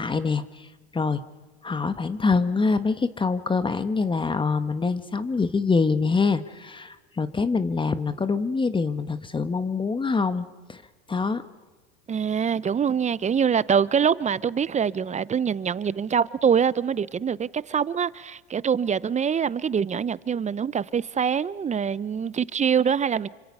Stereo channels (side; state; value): both; normal; correlation 0.54